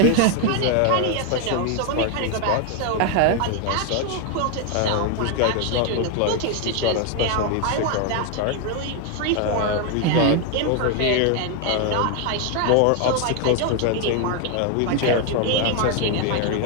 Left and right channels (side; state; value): both; different; correlation 0.01